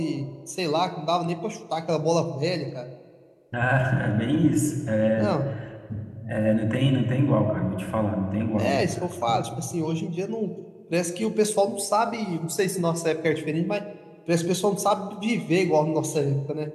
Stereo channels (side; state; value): both; identical; correlation 1.00